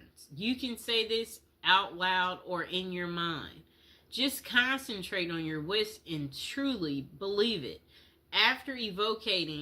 You can say this out loud or in your mind. Just concentrate on your wish and truly believe it. After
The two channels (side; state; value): both; identical; correlation 1.00